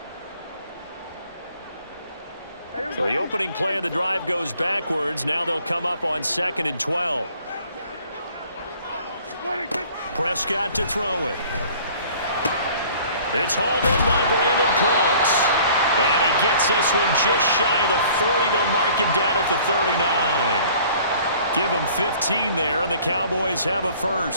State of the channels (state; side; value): inverted; both; correlation -0.52